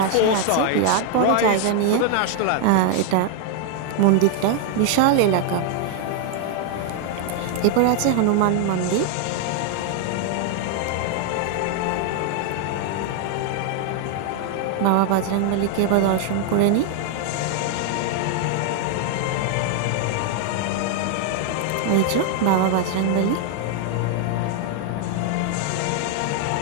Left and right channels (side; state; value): both; different; correlation 0.00